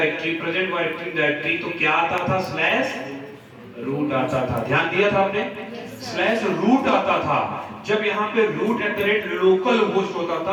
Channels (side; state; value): both; identical; correlation 1.00